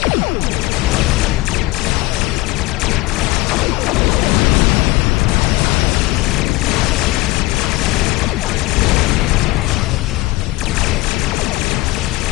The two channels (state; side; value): quieter; right; 20.2 dB